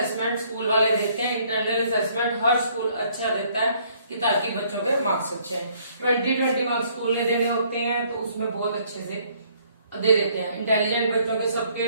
स्कूल वाले देते हैं। इंटरनल असेसमेंट हर स्कूल अच्छा देता है कि ताकि बच्चों के मार्क्स अच्छे हैं। 20 मार्क्स स्कूल ने देने होते हैं तो उसमें बहुत अच्छे से दे देते हैं। इंटेलिजेंट बच्चों के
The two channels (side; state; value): both; inverted; correlation -0.63